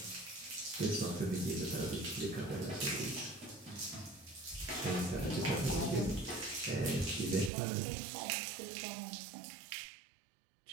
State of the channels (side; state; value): left; drops out; at 7.5 s